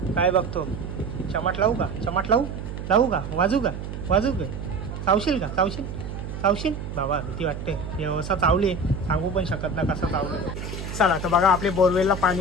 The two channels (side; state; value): right; noise; hum, 7 dB below the sound